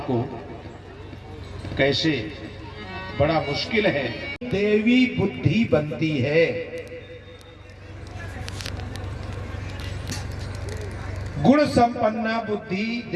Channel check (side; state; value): both; identical; correlation 1.00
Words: कैसे? बड़ा मुश्किल है। देवी बुद्धि बनती है। गुण संपन्ना बुद्धि